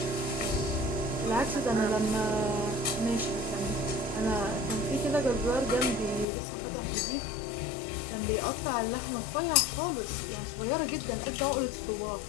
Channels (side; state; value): right; drops out; at 6.2 s